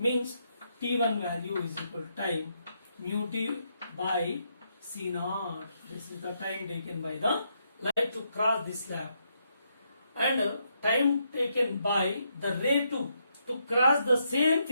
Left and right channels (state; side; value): inverted; both; correlation -0.78